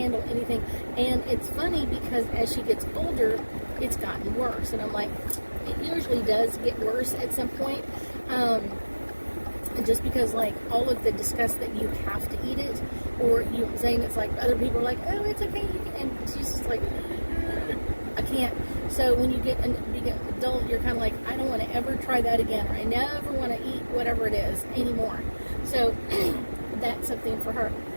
anything. And it's funny because as she gets older, it's gotten worse. And I'm like, it usually does get worse at some point. Just because, like, all of the disgust that you have to eat it, or you saying it's like other people are like, oh, it's okay, you can, and she's just like, I can't. So when you get an adult, you're kind of like, I don't want to ever try that again, or I never want to eat whatever it is anymore. So that's something for her.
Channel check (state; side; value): inverted; both; correlation -1.00